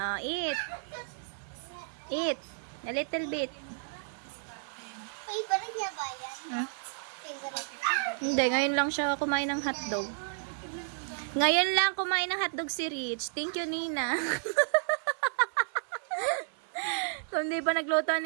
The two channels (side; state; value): left; silent; 56 dB below the other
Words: Eat. Eat. A little bit. Favorite niya ba yan? Favorite. Hindi, ngayon lang siya kumain ng hotdog. Ngayon lang kumain ng hotdog si Rich. Thank you, Nina. Kung di pa nagluto ang